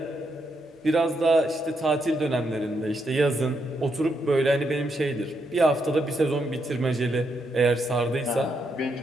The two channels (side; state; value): both; normal; correlation 0.79